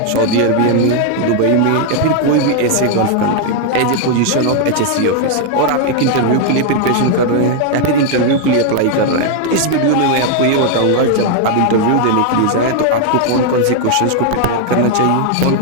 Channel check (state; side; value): different; both; correlation 0.00